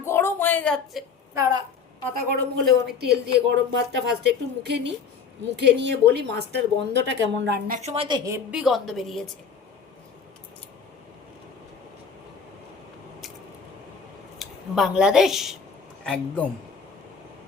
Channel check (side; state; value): right; quieter; 5.9 dB